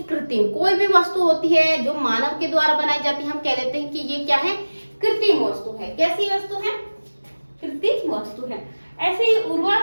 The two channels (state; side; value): inverted; both; correlation -1.00